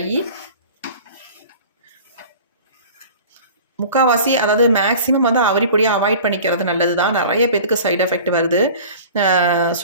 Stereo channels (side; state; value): both; inverted; correlation -0.42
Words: முக்கால்வாசி, அதாவது மேக்ஸிமம் வந்து அவுரி பொடியை அவாய்ட் பண்ணிக்கிறது நல்லது தான். நிறைய பேத்துக்கு சைடு எஃபெக்ட் வருது.